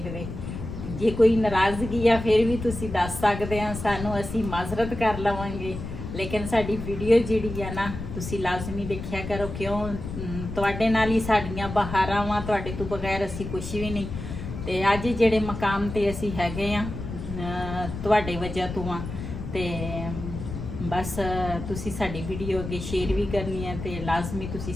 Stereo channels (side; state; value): left; noise; rumble, 8 dB below the sound